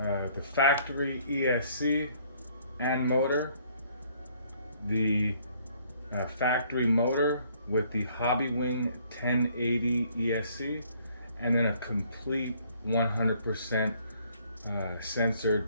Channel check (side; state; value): both; inverted; correlation -0.63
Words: factory ESC and motor, the factory motor with the Hobbywing 1080 ESC, and then a complete 100%